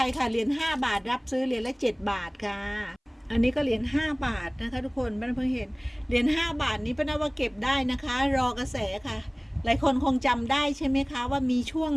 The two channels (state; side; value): identical; both; correlation 1.00